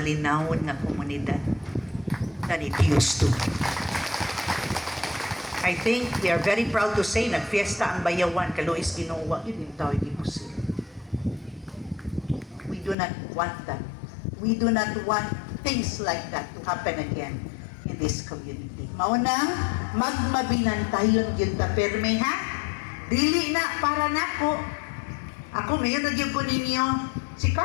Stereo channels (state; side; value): drops out; right; at 13.0 s